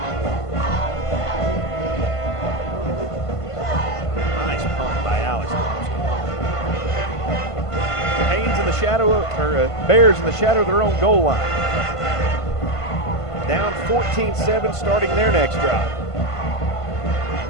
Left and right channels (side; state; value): right; late; 1.5 ms